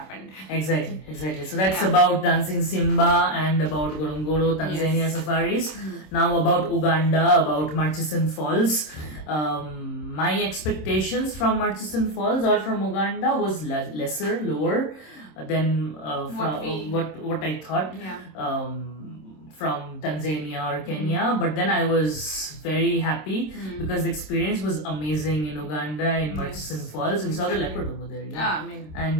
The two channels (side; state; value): right; late; 26 ms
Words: Exactly. So that's about Dancing Simba and about Ngorongoro, Tanzania safaris. Now about Uganda, about Murchison Falls. My expectations from Murchison Falls or from Uganda was lower than what I thought. From Tanzania or Kenya, but then I was very happy because the experience was amazing in Uganda, in Murchison Falls. We saw the leopard over there,